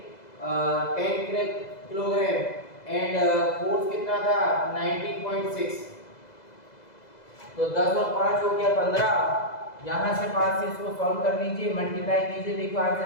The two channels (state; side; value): late; right; 2.0 ms